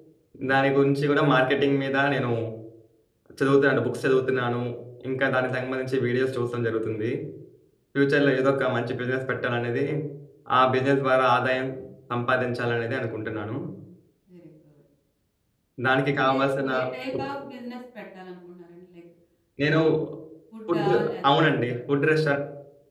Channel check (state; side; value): identical; both; correlation 1.00